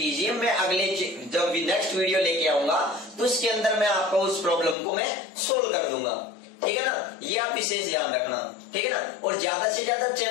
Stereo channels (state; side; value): drops out; right; at 4.8 s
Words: मैं अगले जब नेक्स्ट वीडियो लेके आऊंगा तो इसके अंदर मैं आपको उस प्रॉब्लम को मैं सोल्व कर दूंगा। ठीक है ना? ये आप विशेष ध्यान रखना। ठीक है ना? और ज्यादा से ज्यादा